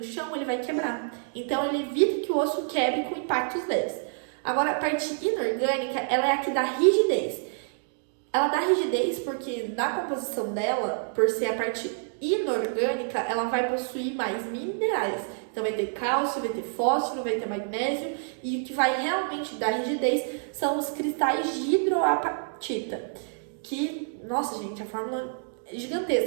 chão, ele vai quebrar. Então, ele evita que o osso quebre com impactos leves. Agora, a parte inorgânica, ela é a que dá rigidez. Ela dá rigidez porque na composição dela, por ser a parte inorgânica, ela vai possuir mais minerais. Então vai ter cálcio, vai ter fósforo, vai ter magnésio, e o que vai realmente dar rigidez são os cristais de hidroapatita. Que, nossa gente, a fórmula é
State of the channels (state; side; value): silent; left; digital silence